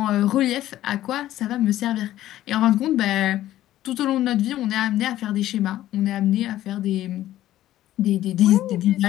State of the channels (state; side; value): quieter; right; 13.7 dB